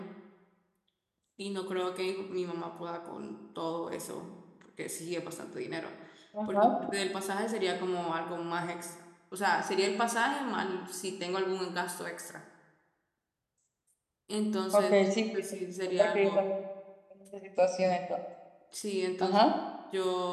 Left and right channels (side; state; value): both; identical; correlation 1.00